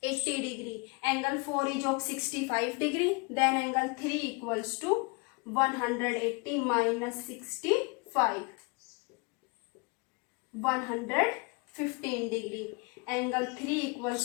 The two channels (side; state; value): right; quieter; 29.8 dB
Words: degree. Angle 4 is of 65 degree, then angle 3 equals to 180 minus 65. 115 degree. Angle 3